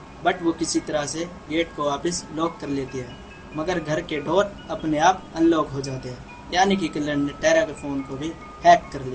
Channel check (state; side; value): identical; both; correlation 1.00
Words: बट वो किसी तरह से गेट को वापस लॉक कर लेती है, मगर घर के डोर अपने आप अनलॉक हो जाते हैं, यानी कि किलर ने टेरा के फ़ोन को भी हैक कर